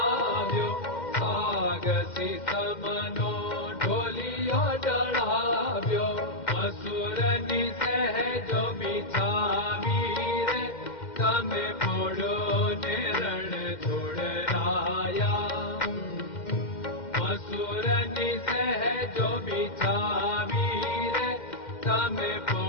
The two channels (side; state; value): right; late; 2.1 ms